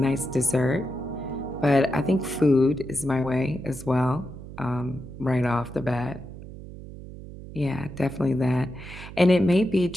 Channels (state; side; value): noise; right; hum, 14 dB below the sound